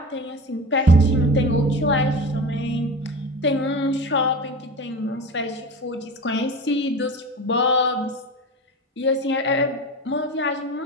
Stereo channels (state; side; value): normal; both; correlation 0.30